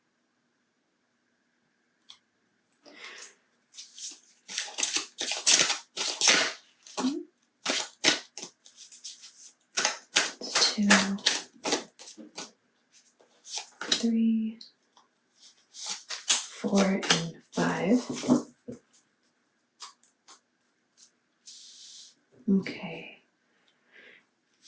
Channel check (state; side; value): identical; both; correlation 1.00